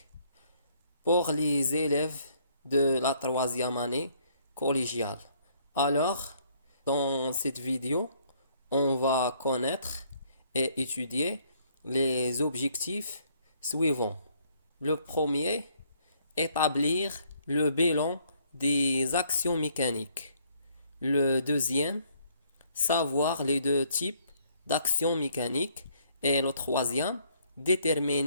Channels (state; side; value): inverted; both; correlation -0.65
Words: pour les élèves de la troisième année collégiale. Alors, dans cette vidéo, on va connaître et étudier les objectifs suivants. Le premier, établir le bilan des actions mécaniques. Le deuxième, savoir les deux types d'actions mécaniques. Et le troisième,